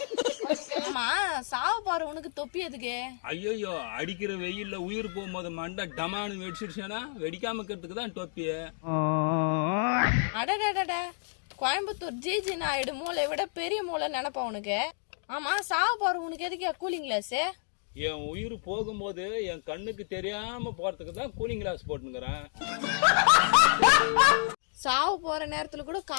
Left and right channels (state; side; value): silent; right; digital silence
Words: ஆமா, சாவ போற உனக்கு தொப்பி எதுக்கு? ஐயோ, அடிக்கிற வெயில்ல உயிர் போகும்போது மண்டை டமானு வெடிச்சிருச்சேனா, வெடிக்காம இருக்கிறதுக்கு தான் தொப்பி. அடடட, கோயம்புத்தூர் ஜிஜி நாயுடு மூளை விட பெரிய மூளை நினைப்பா உனக்கு. ஆமா, சாவ போற உனக்கு எதுக்கு கூலிங் கிளாஸ்? என் உயிர் போகும்போது என் கண்ணுக்கு தெரியாம போறதுக்கு தான் கூலிங் கிளாஸ் போட்டுங்கிறேன். சாவு போற நேரத்துல கூட